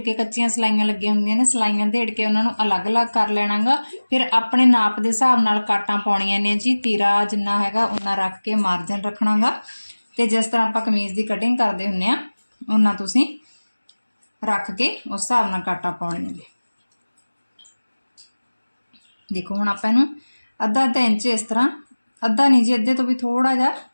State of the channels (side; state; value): both; inverted; correlation -1.00